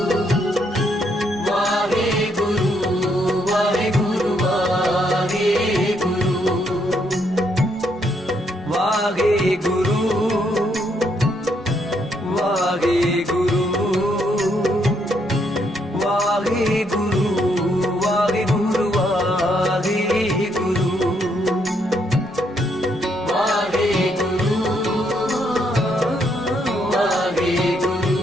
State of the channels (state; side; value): normal; both; correlation 0.74